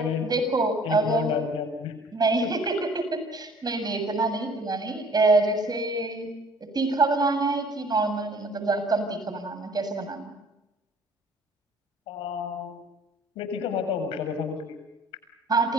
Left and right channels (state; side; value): normal; both; correlation 0.53